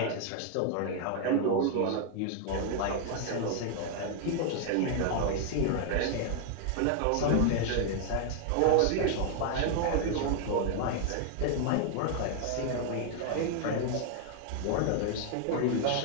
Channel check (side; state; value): both; different; correlation 0.00